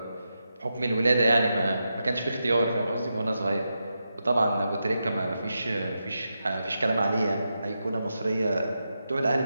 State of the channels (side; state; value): both; inverted; correlation -0.87